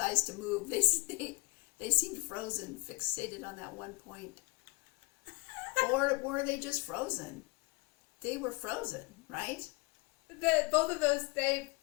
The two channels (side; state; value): right; quieter; 26.5 dB